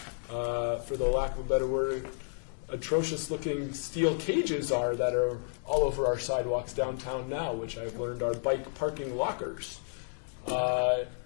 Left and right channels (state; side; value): silent; right; digital silence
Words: for the lack of a better word, atrocious-looking steel cages are that are all over our sidewalks downtown now, which I've learned are bike parking lockers.